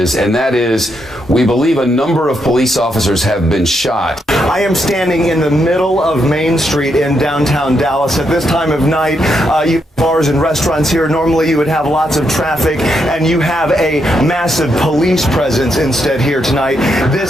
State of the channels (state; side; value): normal; both; correlation 0.80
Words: and that is we believe a number of police officers have been shot. I am standing in the middle of Main Street in downtown Dallas. At this time of night, you have bars and restaurants here. Normally you would have lots of traffic, and you have a massive police presence instead here tonight.